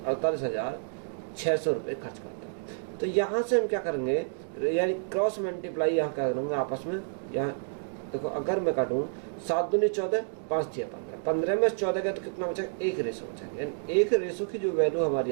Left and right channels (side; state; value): left; silent; digital silence